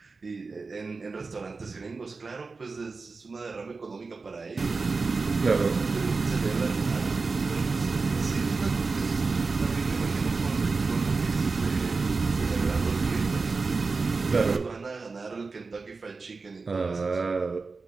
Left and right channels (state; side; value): quieter; left; 4.2 dB